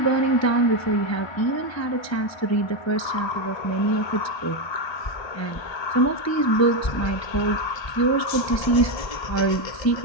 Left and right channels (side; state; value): right; late; 1.3 ms